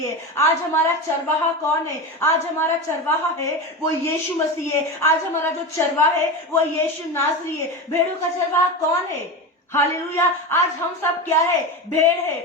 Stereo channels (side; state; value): both; normal; correlation 0.22